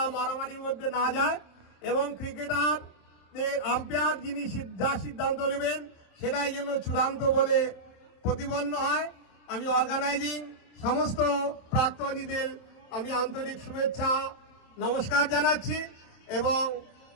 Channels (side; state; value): right; late; 27 ms